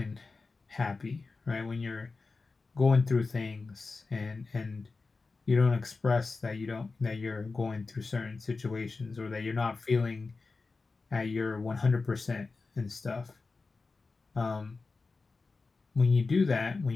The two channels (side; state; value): right; quieter; 4.0 dB